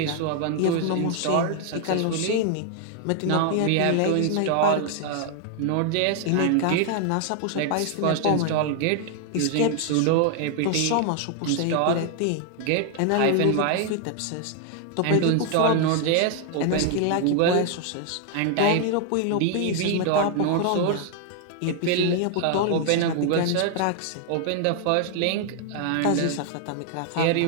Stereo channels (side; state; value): both; different; correlation 0.00